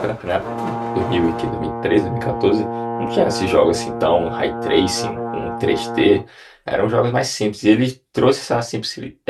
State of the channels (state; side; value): identical; both; correlation 1.00